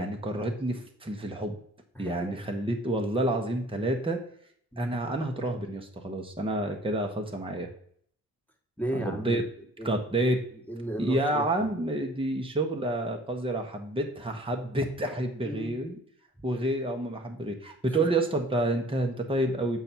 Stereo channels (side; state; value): both; normal; correlation 0.52